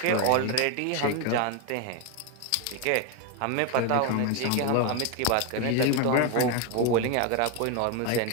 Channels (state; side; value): different; both; correlation 0.01